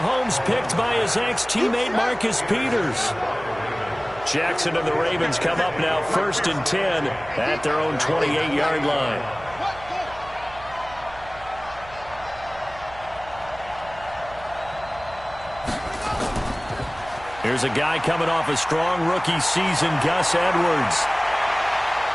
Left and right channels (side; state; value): right; noise; hum, 19 dB below the sound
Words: picked by his ex-teammate Marcus Peters. Jackson and the Ravens come up now 1st and 10 at their own 28-yard line. Here's a guy coming off a strong rookie season, Gus Edwards.